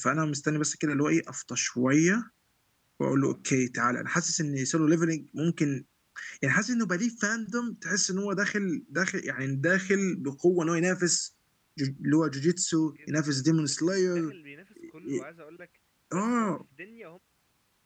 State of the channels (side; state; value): both; identical; correlation 1.00